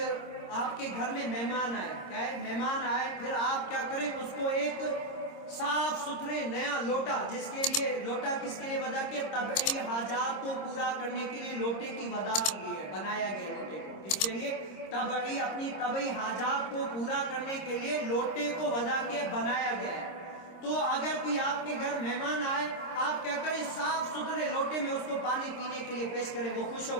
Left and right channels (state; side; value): late; right; 25 ms